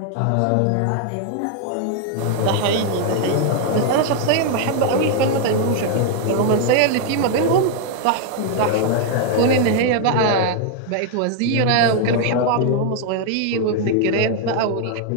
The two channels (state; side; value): different; both; correlation 0.00